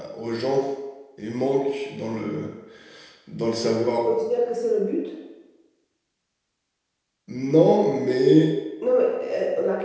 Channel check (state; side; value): identical; both; correlation 1.00